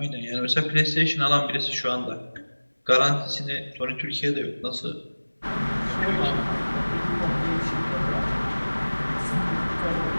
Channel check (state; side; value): inverted; both; correlation -1.00